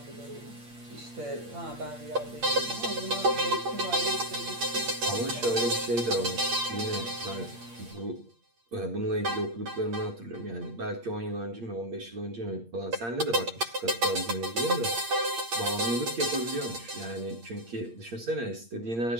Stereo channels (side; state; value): left; late; 8.6 ms